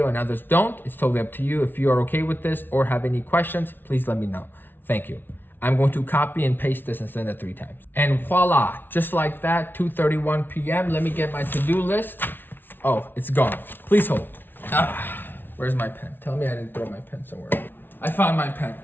and others don't. It's totally up to you. If you are okay with this or have any questions, please let me know. Thank you. I'm going to copy and paste this and send it 3 times. And voila, just like that, 2:31 p.m. Let me get my to-do list. Oh, it's gone. Please hold. Where's my pen? Tell me I didn't throw my pen somewhere. I found my pen.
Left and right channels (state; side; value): late; right; 0.098 ms